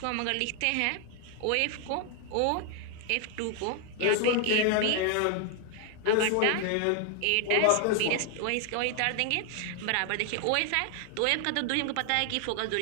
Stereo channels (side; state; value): both; different; correlation 0.00